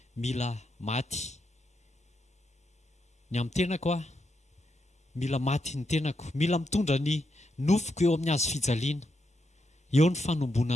mila maty ny amin'ny tenako mila maty ny tenako mila mitondra ny nofoko eo amin'ny hazo fijaliana eo ny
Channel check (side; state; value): both; normal; correlation 0.82